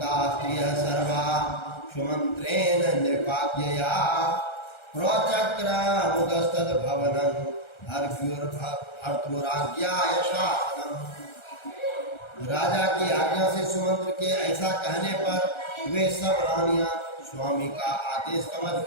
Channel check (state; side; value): late; right; 1.3 ms